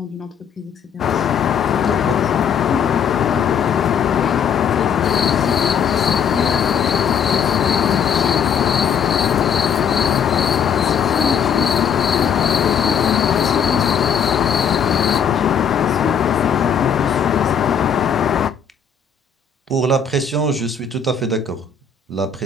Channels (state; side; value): quieter; right; 7.1 dB